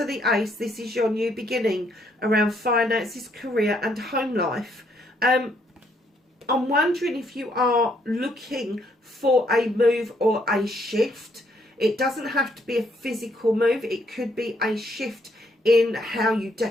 the Ace. This is your new beginning around finances, career and home life. I'm wondering if you are looking for a move or a shift. It doesn't have to be a physical move. It could be a shift in how you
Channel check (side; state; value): both; normal; correlation 0.71